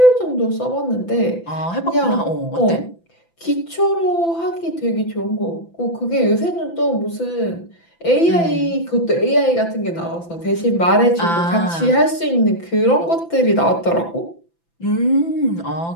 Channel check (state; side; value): late; right; 5.9 ms